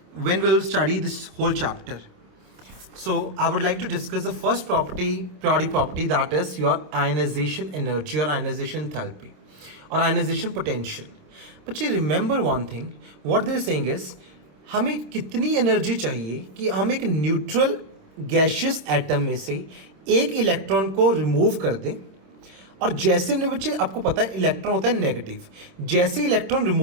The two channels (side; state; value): left; late; 26 ms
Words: when we will study this whole chapter. So I would like to discuss the first property, periodic property, that is your ionization energy or ionization enthalpy or ionization potential. But remember one thing, what they are saying is हमें कितनी एनर्जी चाहिए कि हम एक न्यूट्रल गैशियस एटम में से एक इलेक्ट्रॉन को रिमूव कर दें। और जैसे हमने बच्चे आपको पता है इलेक्ट्रॉन होता है नेगेटिव, जैसे इलेक्ट्रॉन